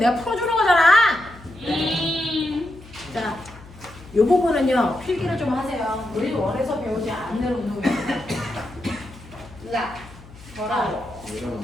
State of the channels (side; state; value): left; noise; hum, 20 dB below the sound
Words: 풀어주는 거잖아. 자, 이 부분은요 필기를 좀 하세요. 우리 원에서 배우지 않는 운동입니다. 자,